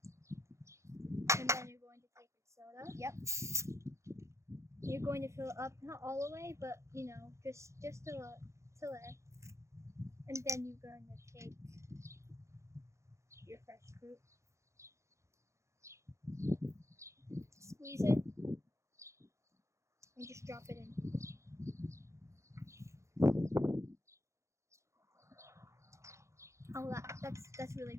And then you're going to take your soda. Yep. You're going to fill it up, not all the way, but just till there. And then you're going to take your fresh fruit, squeeze it, and just drop it in. Oh, that's really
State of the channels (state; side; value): late; left; 0.14 ms